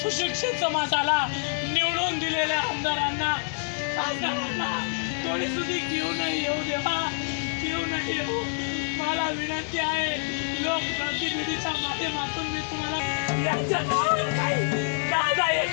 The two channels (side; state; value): right; silent; digital silence